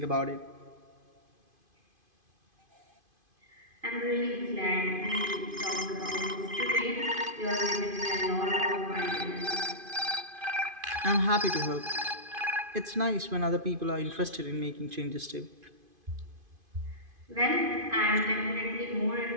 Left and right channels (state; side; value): late; left; 2.5 ms